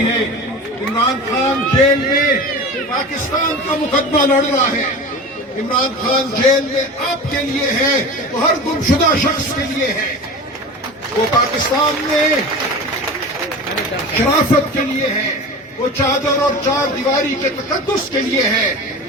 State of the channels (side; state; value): both; normal; correlation 0.32